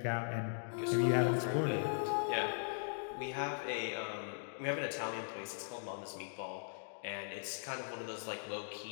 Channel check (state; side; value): silent; right; digital silence